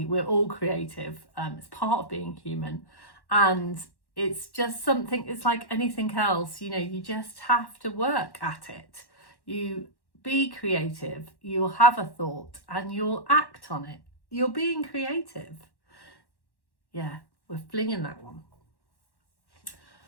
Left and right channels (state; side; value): late; right; 1.1 ms